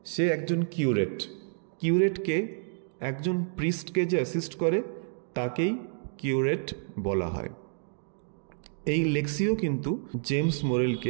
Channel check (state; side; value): silent; left; digital silence